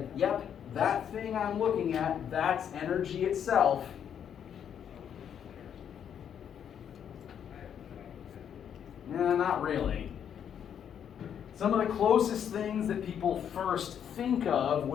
yep, that thing I'm looking at, that's energy itself? Nah, not really. Some of the closest things that people first think of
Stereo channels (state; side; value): quieter; right; 8.7 dB